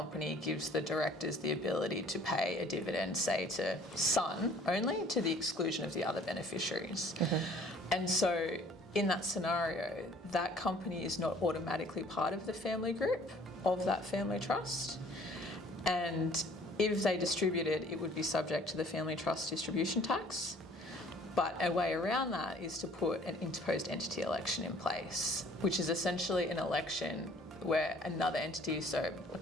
gives the directors the ability to pay a dividend, say, to son only, to the exclusion of the other beneficiaries. Mm-hmm. And so in that scenario, that company is not automatically part of the family group of that family trust. And if they distributed, it would be subject to the family trust distribution tax. But a way around that is to put an interposed entity election in place, which is essentially an election where another entity, so a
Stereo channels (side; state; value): both; normal; correlation 0.55